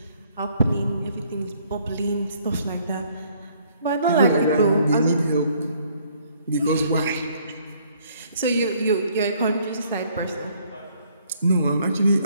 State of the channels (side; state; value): both; inverted; correlation -0.63